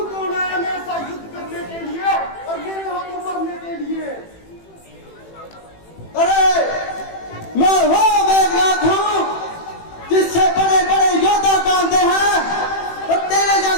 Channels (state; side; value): late; right; 18 ms